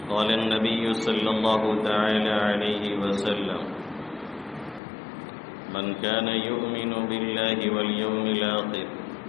قال النبي صلى الله تعالى عليه وسلم من كان يؤمن بالله واليوم الآخر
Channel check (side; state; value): right; drops out; at 4.8 s